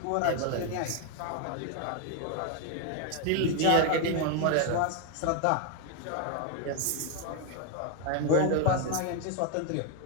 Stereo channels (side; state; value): both; different; correlation 0.01